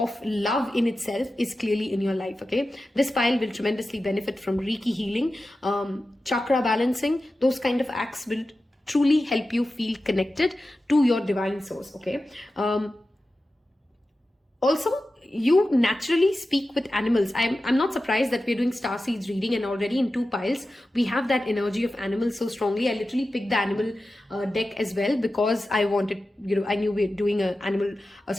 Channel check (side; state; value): both; normal; correlation 0.93